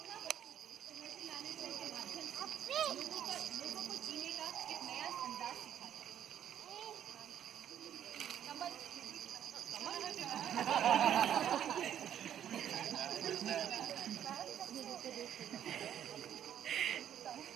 एनर्जी मैनेजमेंट के माध्यम से लोगों को जीने का एक नया अंदाज सिखाया। कमल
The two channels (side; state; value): left; quieter; 10.0 dB